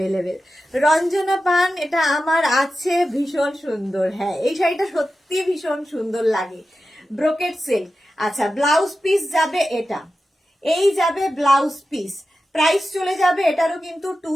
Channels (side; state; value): both; normal; correlation 0.92